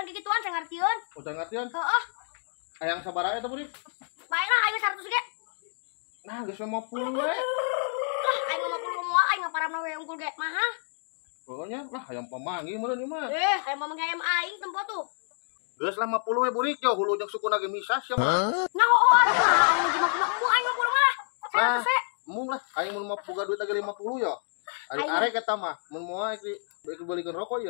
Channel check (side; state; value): right; silent; 56 dB below the other